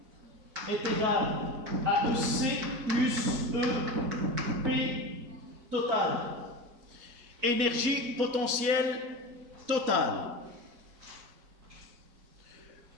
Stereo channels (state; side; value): late; left; 4.5 ms